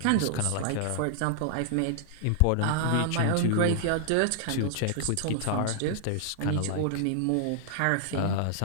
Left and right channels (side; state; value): both; different; correlation -0.01